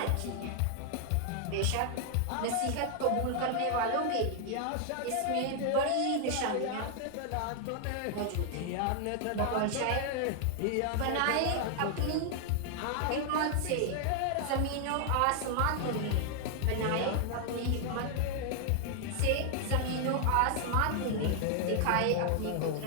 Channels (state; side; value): different; both; correlation 0.00